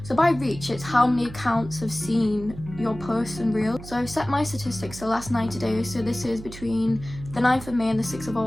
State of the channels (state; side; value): noise; right; hum, 14 dB below the sound